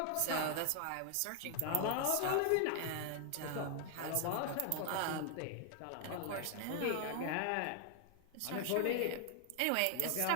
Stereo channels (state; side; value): different; both; correlation 0.00